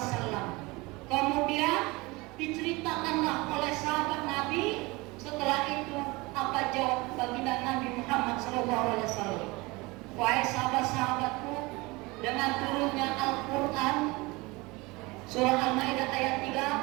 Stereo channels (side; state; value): left; quieter; 23.7 dB